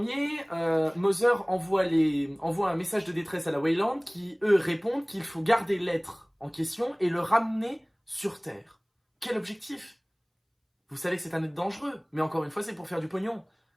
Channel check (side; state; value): both; identical; correlation 1.00